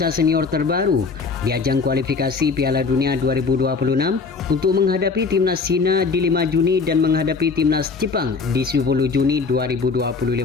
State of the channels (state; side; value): quieter; right; 4.6 dB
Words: senior terbaru di ajang kualifikasi Piala Dunia 2026 untuk menghadapi timnas Cina di 5 Juni dan menghadapi timnas Jepang di 10 Juni